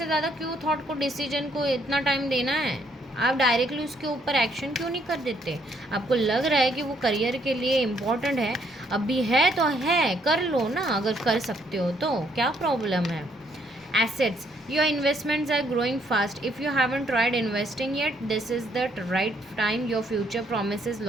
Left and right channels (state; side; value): normal; both; correlation 0.70